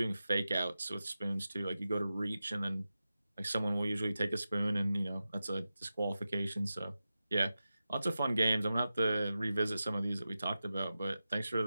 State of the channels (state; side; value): inverted; both; correlation -0.93